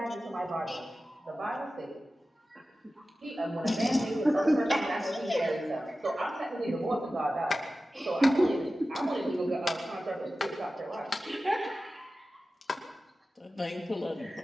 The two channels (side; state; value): both; normal; correlation 0.95